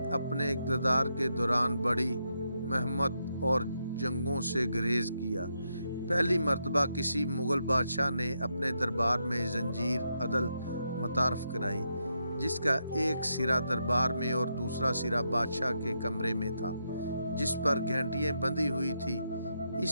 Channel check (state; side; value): inverted; both; correlation -0.82